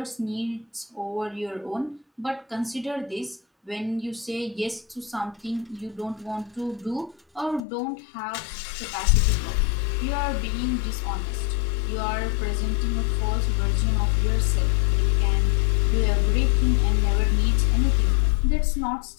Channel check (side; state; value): right; drops out; at 7.6 s